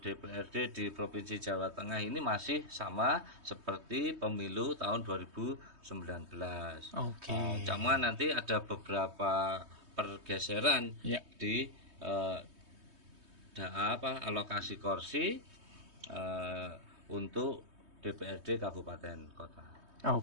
DPRD di Provinsi Jawa Tengah ini masih sama seperti pemilu tahun 2019. Oke. Cuma nanti ada beberapa pergeseran di alokasi kursi untuk DPRD kabupaten kota.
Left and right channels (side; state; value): left; late; 3.2 ms